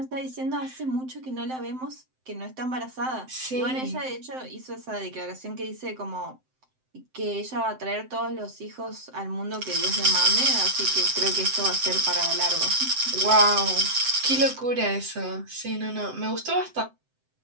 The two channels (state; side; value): late; left; 7.8 ms